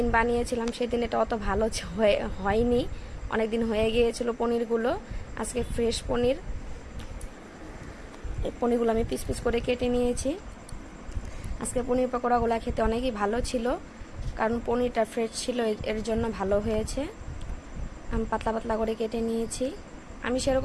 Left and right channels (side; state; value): both; identical; correlation 1.00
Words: বানিয়েছিলাম, সেদিন এটা অত ভালো হয়নি, অনেক দিন হয়ে গিয়েছিল পনিরগুলো। আজকে ফ্রেশ পনির, এই পনিরগুলো আমি পিস পিস করে কেটে নিয়েছি। আজকে পনির পকোড়াগুলো খেতে অনেকই ভালো ছিল, কারণ পনিরটা ফ্রেশ ছিল, এর জন্য ভালো হয়েছে। আমি পাতলা পাতলা করে কেটে নিয়েছি। আমি